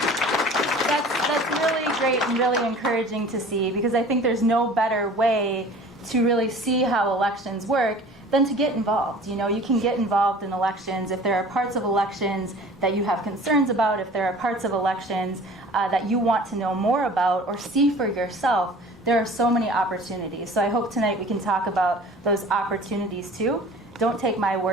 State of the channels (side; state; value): both; normal; correlation 0.45